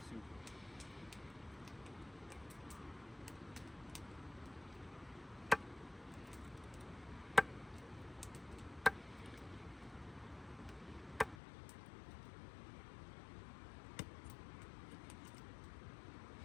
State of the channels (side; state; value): right; drops out; at 11.4 s